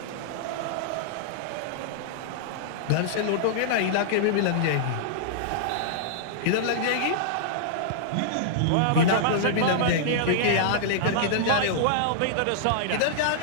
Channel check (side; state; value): both; different; correlation -0.02